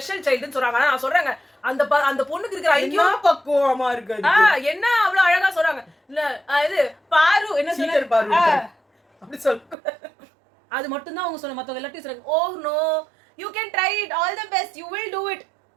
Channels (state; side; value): drops out; left; at 9.8 s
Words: சைல்டுன்னு சொல்றாங்க, ஆனா நான் சொல்றேங்க அந்த பொண்ணுக்கு இருக்கிற ஐக்கியம் பக்குவமா இருக்கு, என்ன அவ்வளவு அழகா சொல்றாங்க, இல்ல இது பாரு என்ன சொல்றாரு அப்படி சொல்ல, அது மட்டும் தான் அவங்க சொன்ன, மத்தவங்க எல்லாத்தையும் சொல்றாங்க oh no you can try it all the best you will do it,